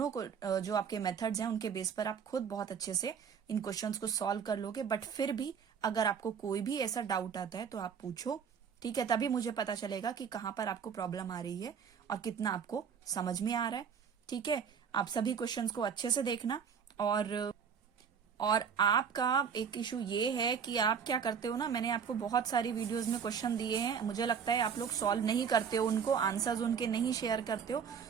को जो आपके मेथड्स हैं उनके बेस पर आप खुद बहुत अच्छे से इन क्वेश्चंस को सॉल्व कर लोगे। बट फिर भी अगर आपको कोई भी ऐसा डाउट आता है तो आप पूछो, ठीक है, तभी मुझे पता चलेगा कि कहाँ पर आपको प्रॉब्लम आ रही है और कितना आपको समझ में आ रहा है, ठीक है। आप सभी क्वेश्चंस को अच्छे से देखना। और आपका एक इशू ये है कि आप क्या करते हो ना, मैंने आपको बहुत सारी वीडियोस में क्वेश्चन दिए हैं, मुझे लगता है आप लोग सॉल्व नहीं करते हो उनको, आंसर्स उनके नहीं शेयर करते हो,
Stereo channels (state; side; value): quieter; left; 6.9 dB